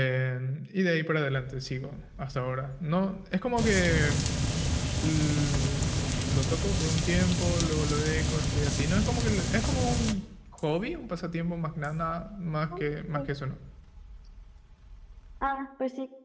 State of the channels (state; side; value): identical; both; correlation 1.00